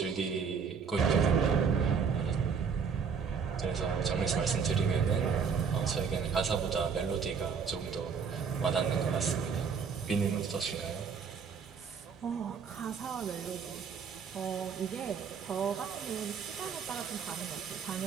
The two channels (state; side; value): quieter; left; 6.2 dB